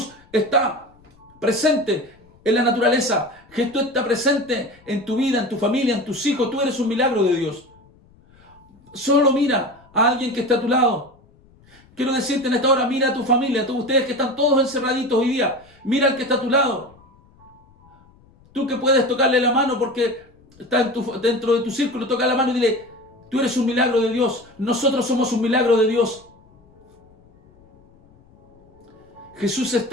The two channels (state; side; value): noise; left; rumble, 29 dB below the sound